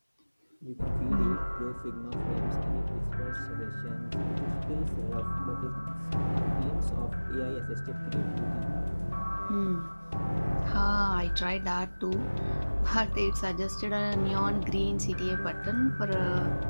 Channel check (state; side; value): inverted; both; correlation -1.00